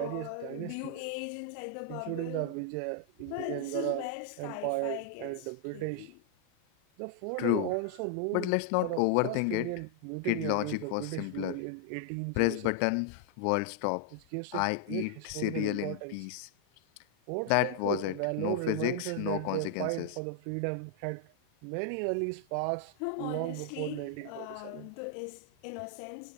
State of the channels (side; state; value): both; different; correlation 0.00